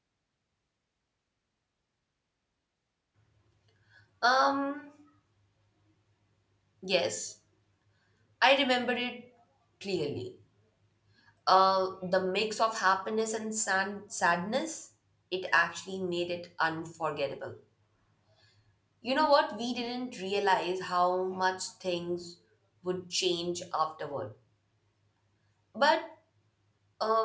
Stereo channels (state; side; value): identical; both; correlation 1.00